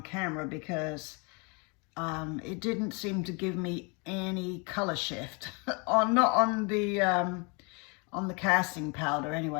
camera, because it didn't seem to give me any color shift, not on the casting powder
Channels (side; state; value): right; quieter; 32.1 dB